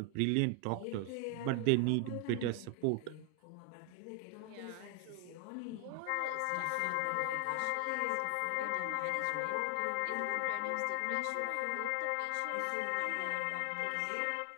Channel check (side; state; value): both; different; correlation 0.00